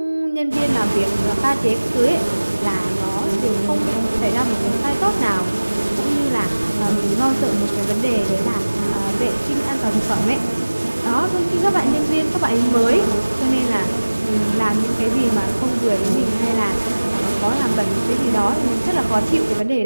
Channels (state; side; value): inverted; both; correlation -1.00